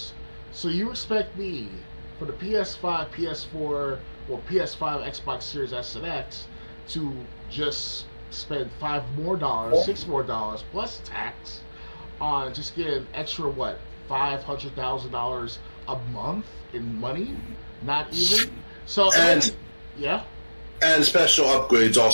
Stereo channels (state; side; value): inverted; both; correlation -1.00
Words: So you expect me for the PS5, PS4, or PS5, Xbox Series S and X to just spend $6 more plus tax on just getting extra what, $500,000 a month in money? Not even. So and special upgrades